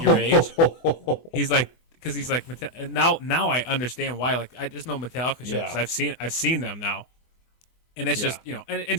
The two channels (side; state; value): right; late; 24 ms